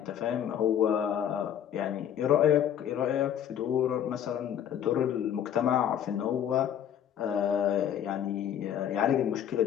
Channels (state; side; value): quieter; right; 9.7 dB